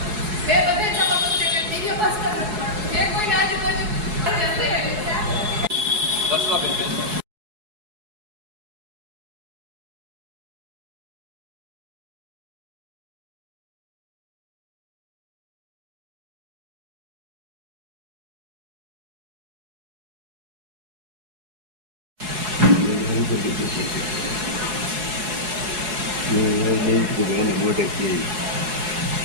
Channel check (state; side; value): late; left; 4.7 ms